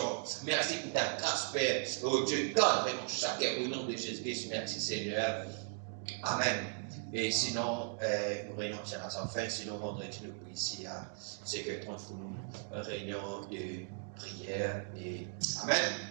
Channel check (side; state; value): left; silent; 53 dB below the other